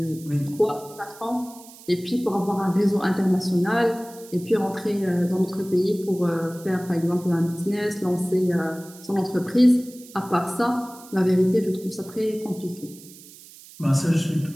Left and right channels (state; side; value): noise; right; hiss, 20 dB below the sound